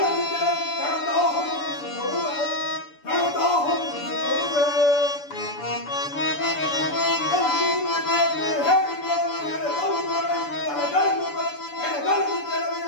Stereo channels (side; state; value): right; late; 6.9 ms